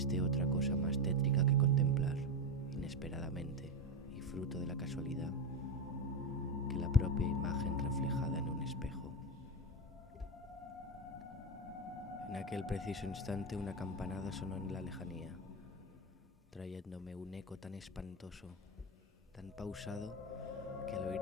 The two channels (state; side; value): normal; both; correlation 0.14